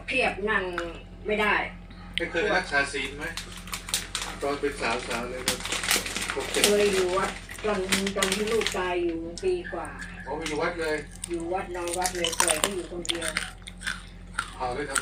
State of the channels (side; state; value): both; identical; correlation 1.00